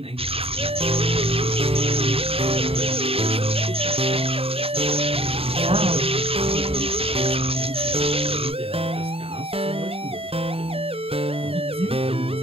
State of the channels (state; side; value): late; left; 0.28 ms